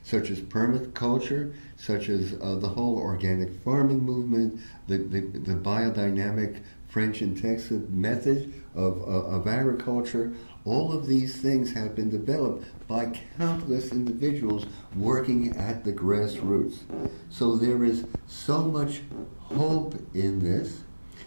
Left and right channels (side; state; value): both; inverted; correlation -1.00